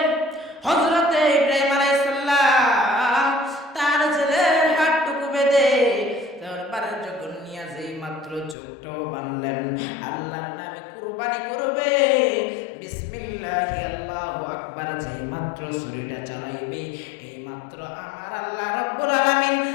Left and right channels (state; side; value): drops out; right; at 8.6 s